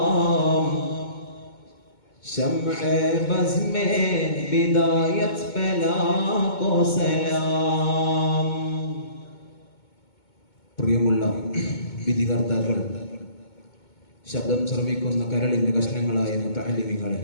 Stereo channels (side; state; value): right; late; 2.2 ms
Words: शम्अ बज़ में बिदायत बला को सलाम. പ്രിയമുള്ള വിധികർത്താക്കൾ, ശബ്ദം ശ്രവിക്കുന്ന കരളിന്റെ കഷ്ണങ്ങളായ മുതഅല്ലിമീങ്ങളെ,